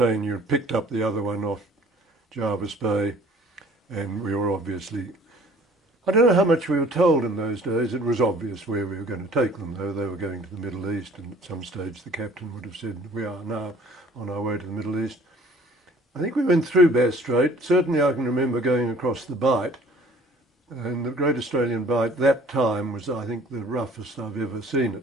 picked up the other one off Jervis Bay, and we were obviously, I don't know how much we were told in those days. It was obvious where we were going to take them, though. They were going to the Middle East, and at some stage the captain would have said, we are now on our way to the Middle East. I think we went through Bass Strait. Certainly I can remember going across the Bight, and the Great Australian Bight that time was, I think, the roughest I've ever seen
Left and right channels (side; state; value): both; normal; correlation 0.52